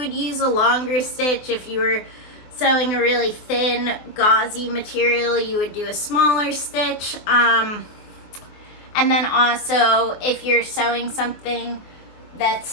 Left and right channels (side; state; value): right; late; 23 ms